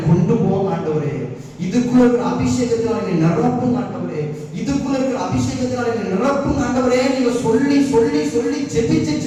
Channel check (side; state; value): both; identical; correlation 1.00